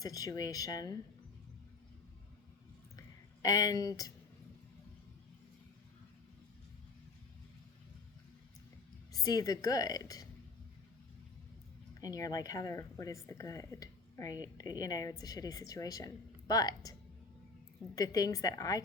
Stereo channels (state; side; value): quieter; right; 4.2 dB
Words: situation and see the good. And you're like, Heather, what is the good? Right? You know, it's a shitty situation. But the things that I